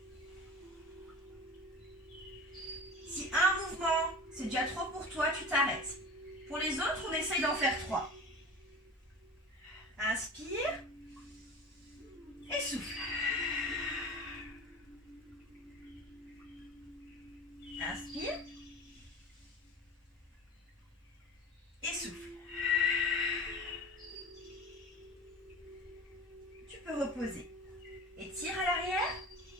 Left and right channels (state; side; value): normal; both; correlation 0.35